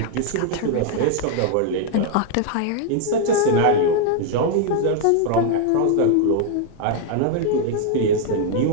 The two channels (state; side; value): different; both; correlation 0.00